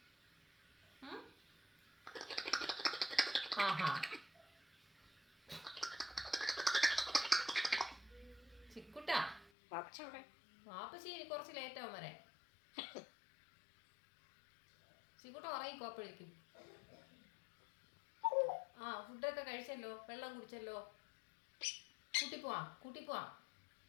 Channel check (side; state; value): right; drops out; at 9.5 s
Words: ആഹാ ചിക്കുട്ടാ വാപ്പച്ചി കുറച്ച് ലേറ്റ് ആവും വരെ ചിക്കുട്ട ഉറങ്ങിക്കോ അപ്പോഴേക്കും ആ ഫുഡൊക്കെ കഴിച്ചല്ലോ വെള്ളം കുടിച്ചല്ലോ കൂട്ടിപ്പോവാ